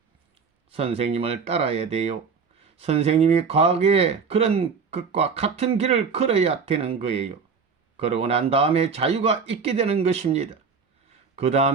선생님을 따라야 돼요. 선생님이 과거에 그런 것과 같은 길을 걸어야 되는 거예요. 그러고 난 다음에 자유가 있게 되는 것입니다. 그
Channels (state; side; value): quieter; left; 5.6 dB